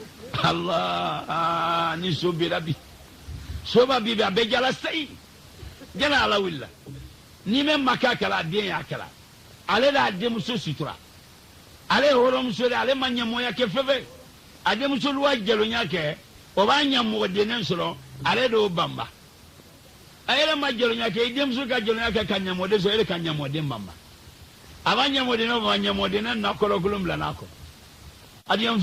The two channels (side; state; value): both; identical; correlation 1.00